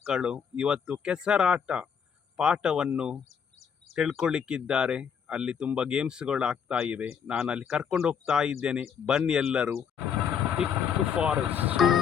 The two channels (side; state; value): right; quieter; 7.3 dB